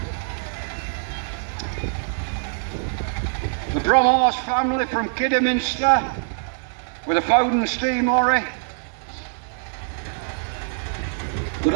The Bromhorse family from Kidderminster with a Foden steam lorry. Good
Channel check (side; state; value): left; silent; digital silence